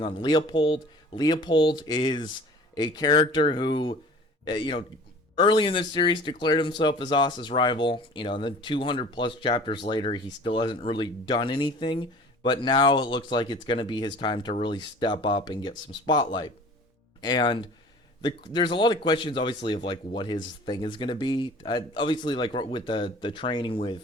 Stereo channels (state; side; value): normal; both; correlation 0.45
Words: on Leopold. Leopold is a character who, early in this series declared himself as Asa's rival. And then 200 plus chapters later, he still hasn't really done anything. But now it looks like it's going to be his time to really step up and get some spotlight. And there's a lot of questions, obviously, of what his thing is going to be. Obviously, with the training